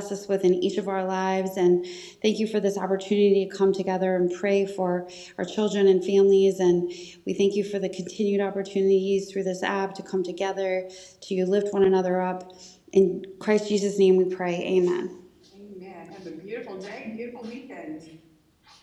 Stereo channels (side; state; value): both; identical; correlation 1.00